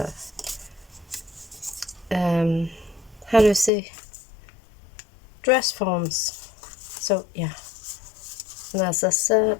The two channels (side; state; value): right; drops out; at 3.7 s